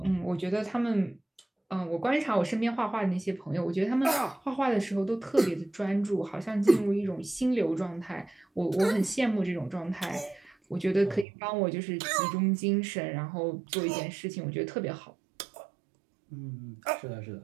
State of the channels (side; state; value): left; drops out; at 11.2 s